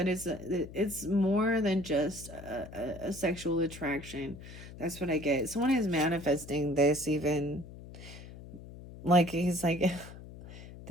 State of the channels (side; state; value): left; noise; hum, 15 dB below the sound